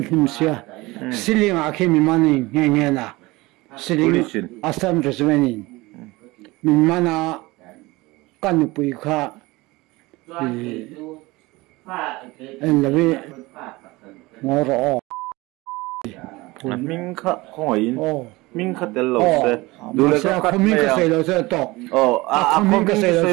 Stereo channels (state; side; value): quieter; left; 21.6 dB